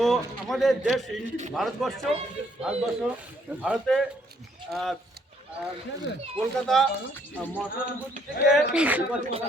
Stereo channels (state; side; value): normal; both; correlation 0.67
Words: আমাদের দেশ ভারতবর্ষ ভারতে কলকাতা মহানগর থেকে